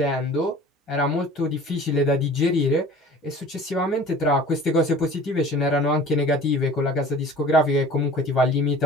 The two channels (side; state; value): both; normal; correlation 0.45